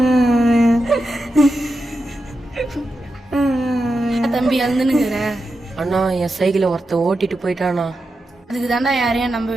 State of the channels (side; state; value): both; normal; correlation 0.89